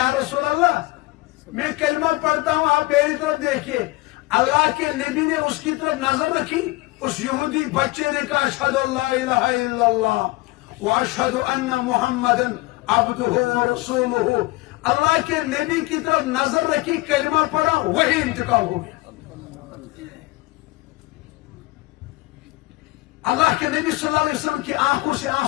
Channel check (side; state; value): right; quieter; 21.2 dB